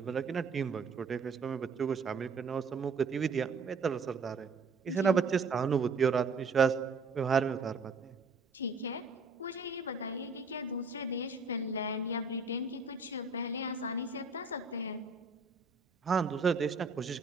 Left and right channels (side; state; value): left; quieter; 4.1 dB